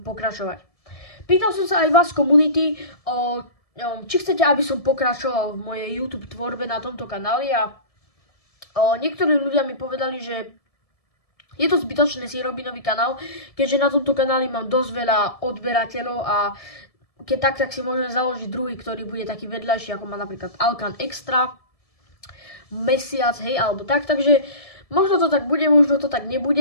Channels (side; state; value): right; late; 1.7 ms